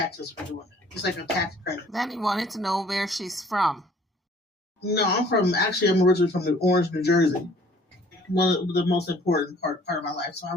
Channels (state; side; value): normal; both; correlation 0.55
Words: for doing it. It's like a tax credit. Then he wanted to know where she's from. No, I'm originally from Orange, New Jersey. One of the most important part of my life. So I